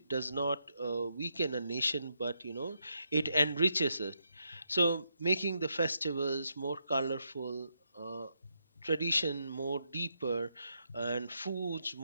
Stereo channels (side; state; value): both; inverted; correlation -0.80